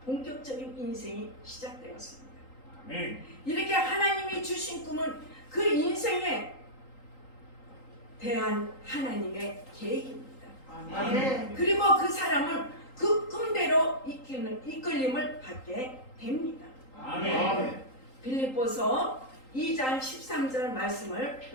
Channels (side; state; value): right; late; 3.8 ms